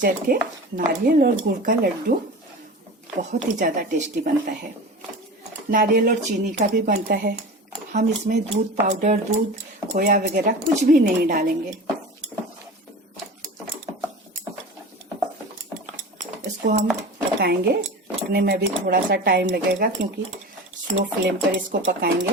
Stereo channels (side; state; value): both; normal; correlation 0.33